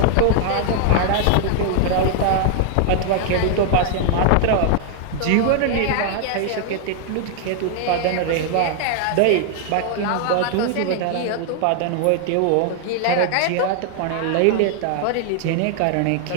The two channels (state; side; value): different; both; correlation 0.00